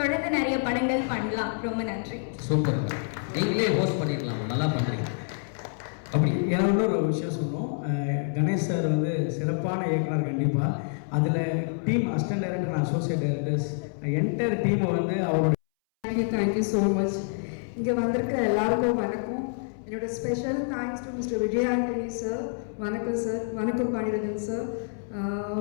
நிறைய படங்கள் பண்ணலாம். ரொம்ப நன்றி. சூப்பர். நீங்களே ஹோஸ்ட் பண்ணிடலாம். நல்லா பண்ணுறீங்க. அப்படி ஏன்னா இன்னொரு விஷயம் சொன்னோம். கணேஷ் சார் வந்து சிறப்பான இயக்குனர் கண்டிப்பாக. அதில் team assistant director and associate directors entire டீமை வந்து அவரோட தேங்க்யூ ஸோ மச். இங்கே வந்திருக்கிற எல்லாருக்கும் வணக்கம். என்னோட special thanks to mister Vijay Antony sir. வணக்கம் சார். வணக்கம் பாண்டியராஜன் சார்.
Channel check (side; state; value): right; silent; 60 dB below the other